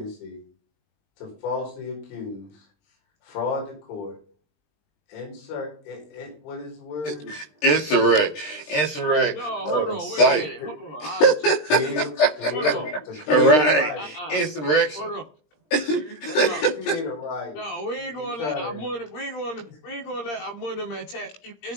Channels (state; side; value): late; right; 20 ms